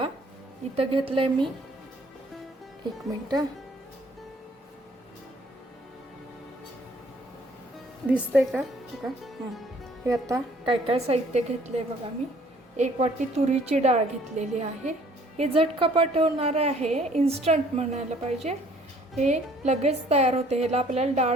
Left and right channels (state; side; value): normal; both; correlation 0.59